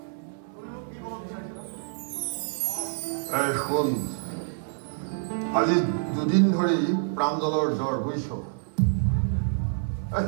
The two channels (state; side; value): silent; left; 60 dB below the other